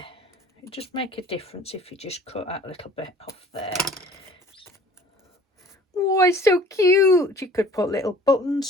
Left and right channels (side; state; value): both; normal; correlation 0.49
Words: it just make a difference if you just cut that little bit off there. Oh, it's so cute. You could put little